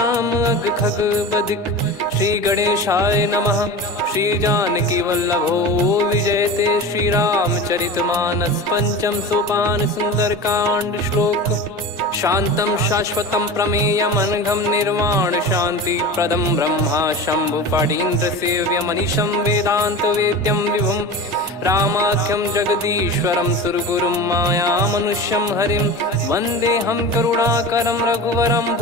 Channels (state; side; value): normal; both; correlation 0.30